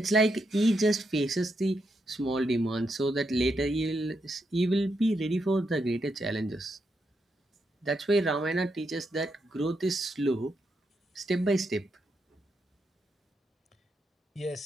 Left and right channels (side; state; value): both; normal; correlation 0.82